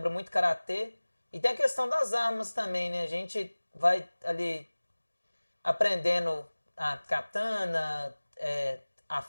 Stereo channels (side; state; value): both; inverted; correlation -1.00